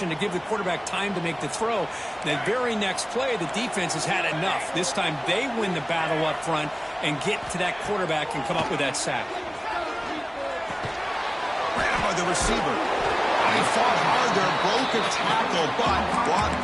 to give the quarterback time to make the throw. The very next play, the defense has had enough. This time they win the battle up front and get to that quarterback and come up with that sack. Ran by the receiver. He fought hard there, broke a tackle, but brought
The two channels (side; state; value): both; identical; correlation 1.00